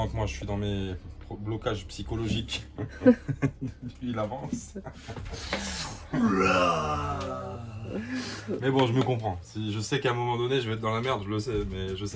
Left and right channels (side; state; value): both; identical; correlation 1.00